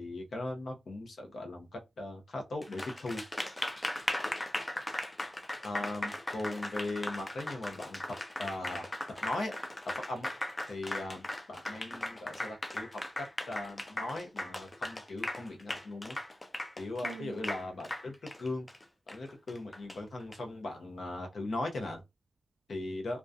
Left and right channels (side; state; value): both; normal; correlation 0.94